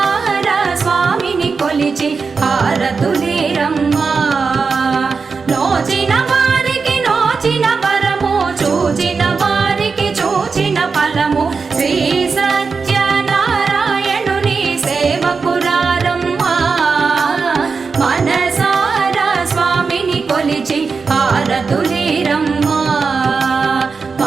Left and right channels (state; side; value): quieter; left; 4.9 dB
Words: స్వామిని కొలిచి హారతులీరమ్మా నోచిన వారికి నోచిన వరము చూచిన వారికి చూచిన ఫలము శ్రీ సత్యనారాయణుని సేవకురారమ్మా మనసారా స్వామిని కొలిచి హారతులీరమ్మా